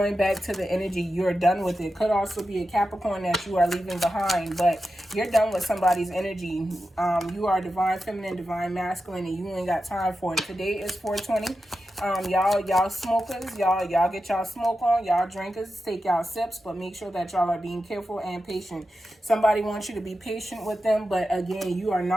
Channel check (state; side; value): normal; both; correlation 0.90